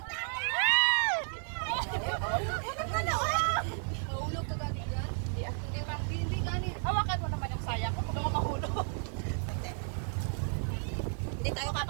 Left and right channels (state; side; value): silent; left; 56 dB below the other